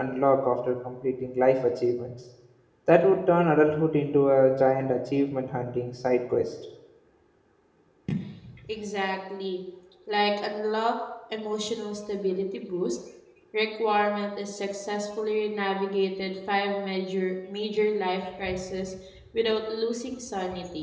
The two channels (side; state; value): both; identical; correlation 1.00